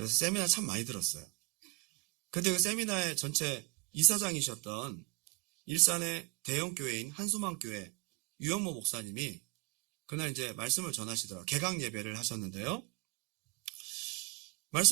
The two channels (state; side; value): quieter; left; 28.0 dB